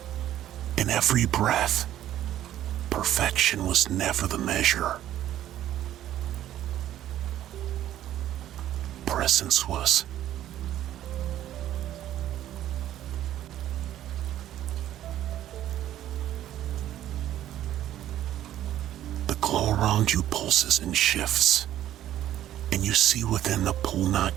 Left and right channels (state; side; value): quieter; left; 12.4 dB